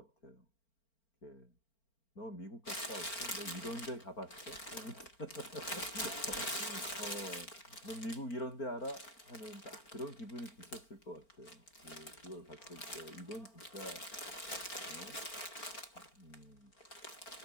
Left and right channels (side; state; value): right; late; 4.4 ms